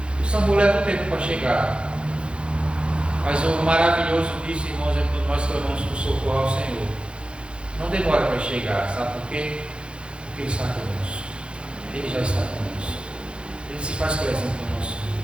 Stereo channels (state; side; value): late; left; 0.056 ms